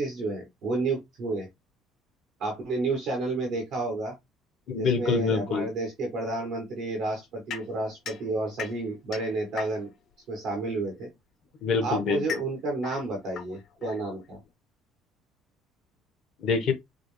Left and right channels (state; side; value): normal; both; correlation 0.51